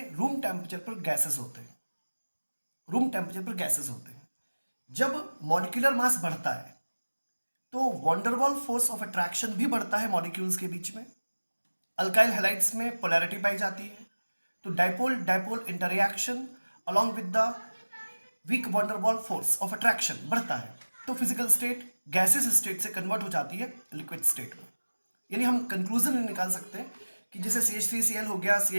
रूम टेम्परेचर पर गैसेस होते हैं, रूम टेम्परेचर पर गैसेस होते हैं। जब मॉलिक्यूलर मास बढ़ता है तो वॉन्डरवॉल फोर्स ऑफ अट्रैक्शन भी बढ़ता है मॉलिक्यूल्स के बीच में। अल्काइल हैलाइड्स में पोलैरिटी पाई जाती है, तो dipole dipole interaction along with the weak van der Waals force of attraction बढ़ता है, तो फिजिकल स्टेट गैसेस स्टेट से कन्वर्ट हो जाती है लिक्विड स्टेट में। यानी हम कंक्लूजन निकाल सकते हैं कि जैसे CH3Cl हो गया,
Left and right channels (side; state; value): both; inverted; correlation -1.00